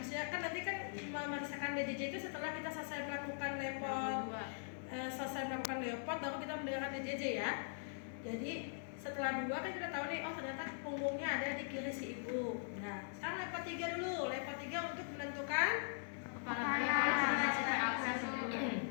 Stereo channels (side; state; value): right; silent; 50 dB below the other